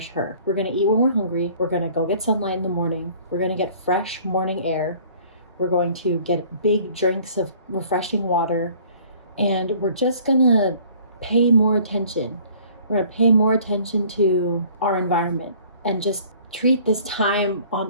her. We're gonna eat when we're hungry. We're gonna go get sunlight in the morning. We're gonna get fresh morning air. We're going to get big drinks of refreshing water. And we're just gonna pay more attention. We're gonna pay more attention to our environment and just treat this time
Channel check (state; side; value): inverted; both; correlation -0.53